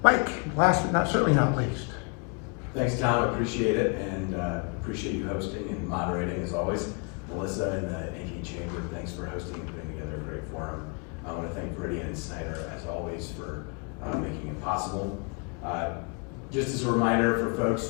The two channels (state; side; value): quieter; right; 34.8 dB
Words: Mike, last but certainly not least. Thanks, Tom. I appreciate it, and appreciate you hosting and moderating as always. Melissa and the Ankeny Chamber, thanks for hosting and putting together a great forum. I want to thank Viridian and Snyder as always for making it possible. Just as a reminder for folks